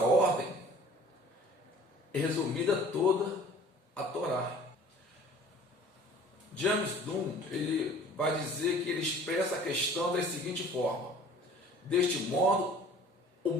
é resumida toda a Torá. James Dunn, ele vai dizer que ele expressa a questão da seguinte forma: deste modo, o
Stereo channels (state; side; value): normal; both; correlation 0.48